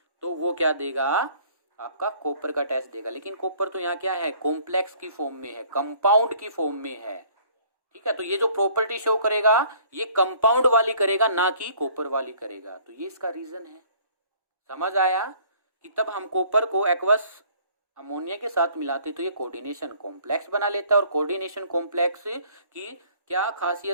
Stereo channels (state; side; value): late; left; 1.1 ms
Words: तो वो क्या देगा, आपका कॉपर का टेस्ट देगा। लेकिन कॉपर तो यहाँ क्या है, कॉम्प्लेक्स की फॉर्म में है, कंपाउंड की फॉर्म में है, ठीक है। तो ये जो प्रॉपर्टी शो करेगा ये कंपाउंड वाली करेगा, ना कि कॉपर वाली करेगा। तो ये इसका रीजन है। समझ आया कि तब हम कॉपर को एक्वस अमोनिया के साथ मिलाते तो ये कोऑर्डिनेशन कॉम्प्लेक्स बना लेता है। और कोऑर्डिनेशन कॉम्प्लेक्स की क्या